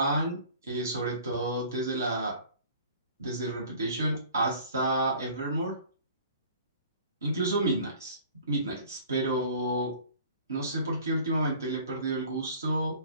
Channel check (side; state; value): both; inverted; correlation -0.48